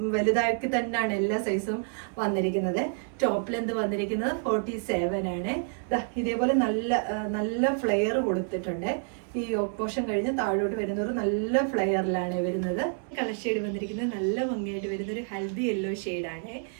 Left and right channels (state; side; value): silent; left; 59 dB below the other